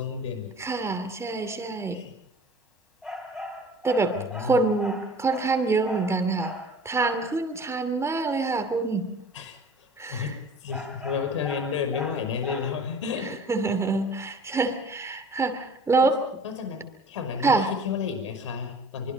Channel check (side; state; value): both; normal; correlation 0.46